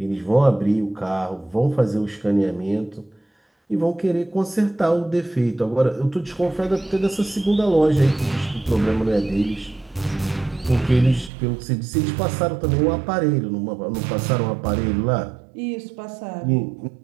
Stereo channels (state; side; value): drops out; left; at 11.3 s